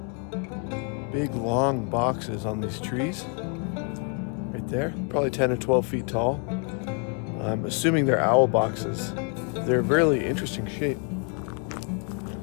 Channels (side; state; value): right; quieter; 36.8 dB